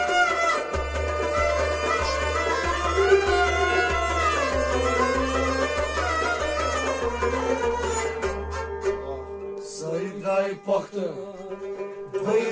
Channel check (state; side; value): identical; both; correlation 1.00